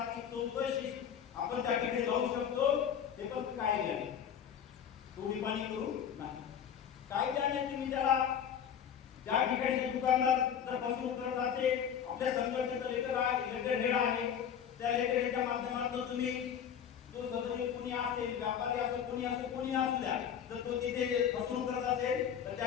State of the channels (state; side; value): quieter; right; 8.5 dB